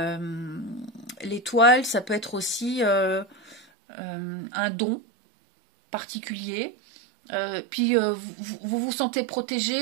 L'étoile, ça peut être aussi un don particulier. Puis vous vous sentez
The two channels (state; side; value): drops out; left; at 3.7 s